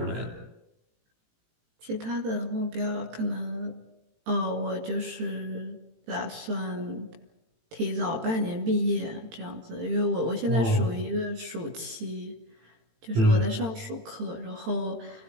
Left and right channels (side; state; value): left; late; 18 ms